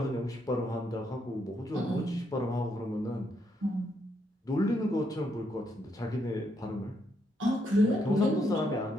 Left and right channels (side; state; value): both; normal; correlation 0.76